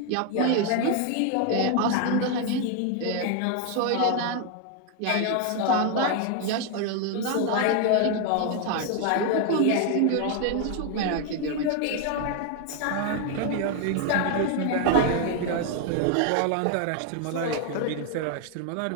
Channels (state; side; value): different; both; correlation 0.00